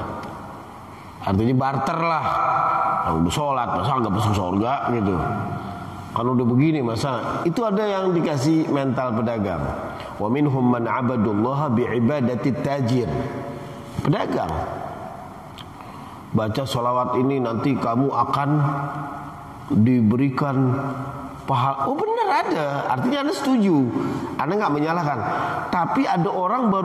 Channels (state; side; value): identical; both; correlation 1.00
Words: Artinya barter lah. Udah sholat masa nggak masuk surga gitu. Kalau udah begini masa itu ada yang dikasih mental pedagang. Wa minhum man abadullaha bi'ibadati tajir. Pedagang. Baca sholawat ini nanti kamu akan diberikan pahala. Oh benar ada. Artinya Anda setuju. Anda nggak menyalahkan. Tapi ada orang